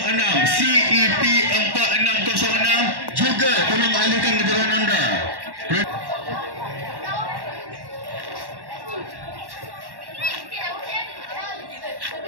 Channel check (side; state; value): left; late; 1.1 ms